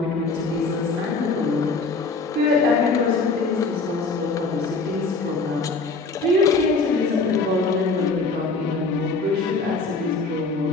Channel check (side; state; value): right; quieter; 3.9 dB